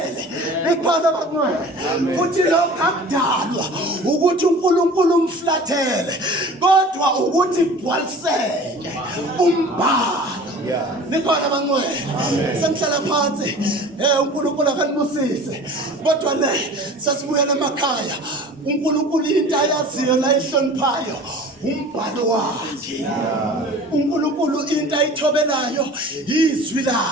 Ikhona bakungcwele futhi lokho akudalwa ukuthi uNkulunkulu umflathele kodwa ukuthi igcwaliseke umbhalo. Nikhona bangcwele semhlala phansi uNkulunkulu akanibusise kodwa le sasibuyela emakhaya uNkulunkulu into ayaziyo la ihloniphayo umbhalo wakhe. uNkulunkulu into ayithobelayo izwi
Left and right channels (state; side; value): normal; both; correlation 0.42